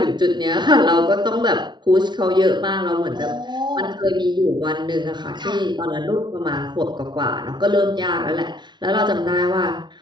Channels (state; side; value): late; left; 0.21 ms